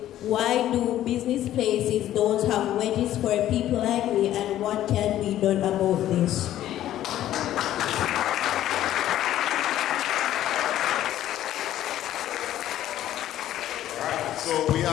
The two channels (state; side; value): quieter; right; 12.7 dB